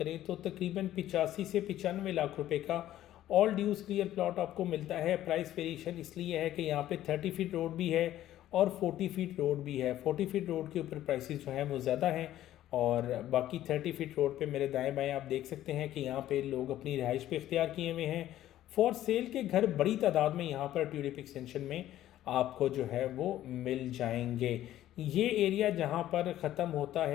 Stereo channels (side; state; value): right; quieter; 13.2 dB